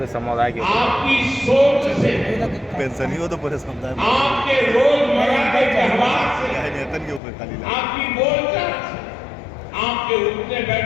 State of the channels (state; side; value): drops out; right; at 7.2 s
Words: समुदाय के आपकी सोच से, पेंशन ही हो तो पूरे समुदाय में आपके रोजमर्रा के व्यवहार से, नेतन के ऊपर खाली आपकी बोलचाल से, आपके उठने